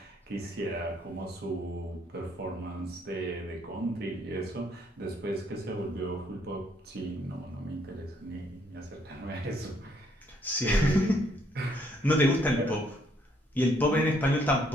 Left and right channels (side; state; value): both; normal; correlation 0.69